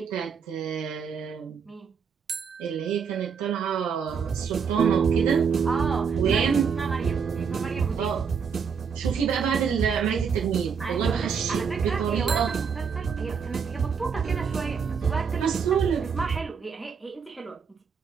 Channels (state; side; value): quieter; left; 6.4 dB